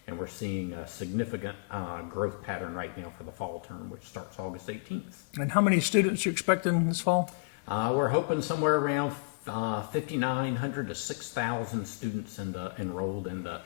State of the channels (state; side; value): quieter; right; 33.1 dB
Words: And we're seeing a significant growth pattern right now for the fall term, which starts August 18th. And how many students are you expecting this fall? We're hoping somewhere around 5,900 to 6,000 students enrolled in the